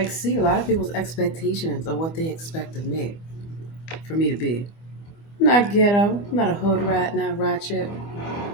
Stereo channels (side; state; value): right; late; 25 ms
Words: see a lot of people's expectations of what they expect of me, for me to be. Not ghetto, not a hood rat, not ratchet.